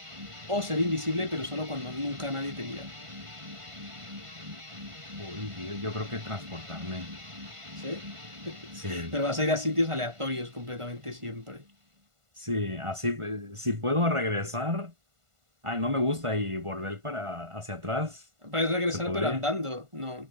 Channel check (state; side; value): late; left; 1.5 ms